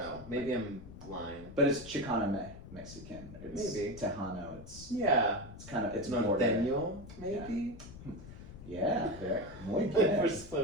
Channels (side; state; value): left; noise; rumble, 15 dB below the sound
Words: Maybe I'm blind. But it's Chicano Mexican. It's maybe. Tejano. It's kind of Norteño, maybe. Yeah, very muy bien. We're